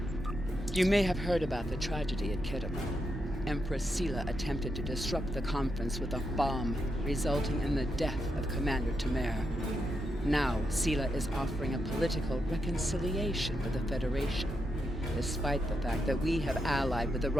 You may have heard about the tragedy at Khitomer. Empress Sela attempted to disrupt the conference with a bomb, resulting in the death of Commander Tamer. Now, Sela is offering a political reconciliation with the Federation, despite the fact that we have allied with the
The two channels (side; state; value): both; normal; correlation 0.84